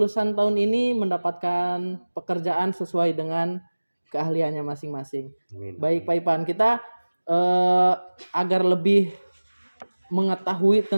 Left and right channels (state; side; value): inverted; both; correlation -1.00